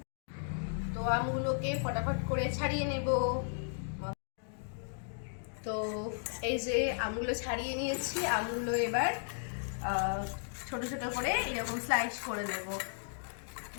তো আমগুলোকে ফটাফট করে ছাড়িয়ে নেব। তো এই যে আমগুলো ছাড়িয়ে নিয়েছি, আমগুলো এবার ছোট ছোট করে এরকম স্লাইস করে দেব।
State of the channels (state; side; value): silent; right; digital silence